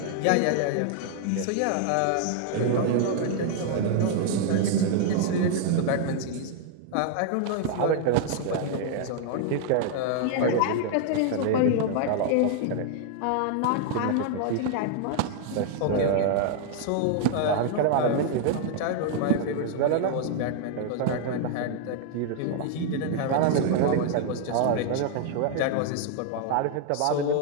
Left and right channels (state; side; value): different; both; correlation 0.00